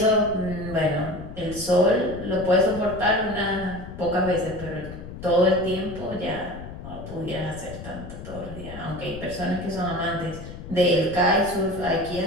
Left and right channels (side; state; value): left; noise; rumble, 12 dB below the sound